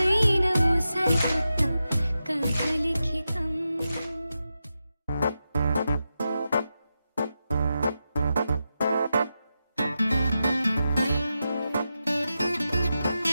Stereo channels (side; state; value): both; inverted; correlation -0.90